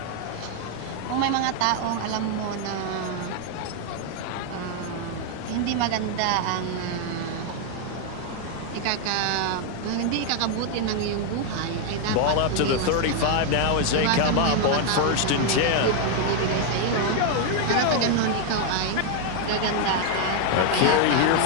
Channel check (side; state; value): both; different; correlation 0.00